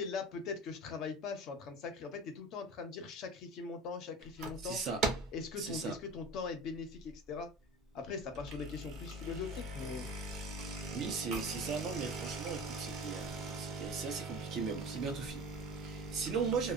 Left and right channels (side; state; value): both; normal; correlation 0.37